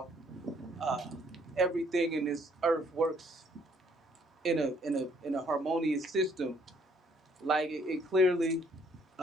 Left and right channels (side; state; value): both; normal; correlation 0.65